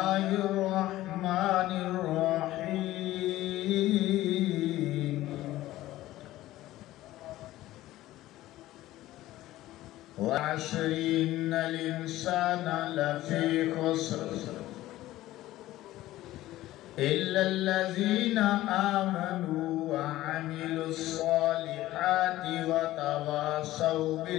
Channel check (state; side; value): quieter; right; 15.7 dB